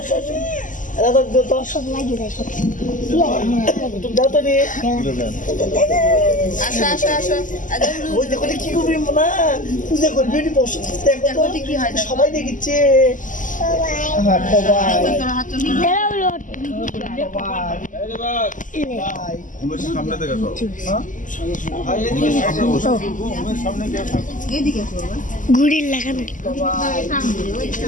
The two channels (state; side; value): late; right; 0.38 ms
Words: সব লাগিয়ে দেয়, সব দাও তো রে। আসো আসো আসো ওই দেখো কি করবি না, পূজা করবি বসে দেখো তো কি হয় সবাই দেখছে। ঘুড়ির লাগানো